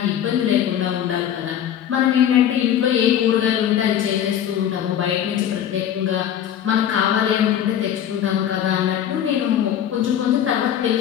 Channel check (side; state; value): right; quieter; 10.0 dB